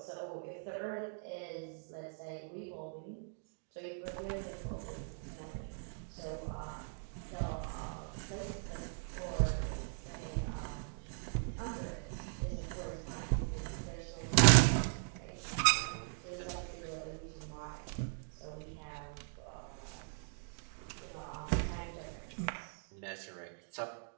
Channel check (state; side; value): silent; left; digital silence